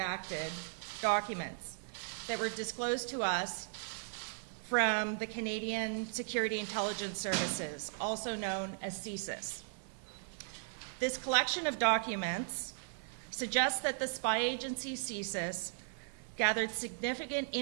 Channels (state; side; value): silent; left; 53 dB below the other